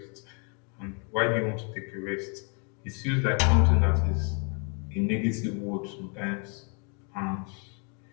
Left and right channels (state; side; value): quieter; right; 37.3 dB